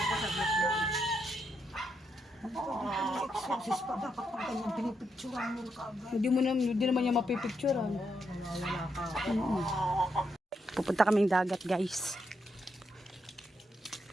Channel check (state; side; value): normal; both; correlation 0.80